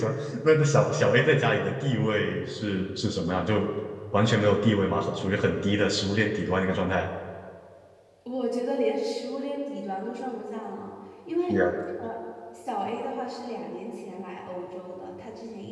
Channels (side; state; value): both; identical; correlation 1.00